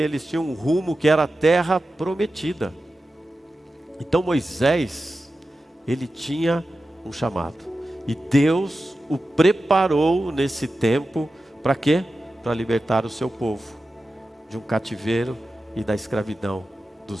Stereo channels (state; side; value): normal; both; correlation 0.93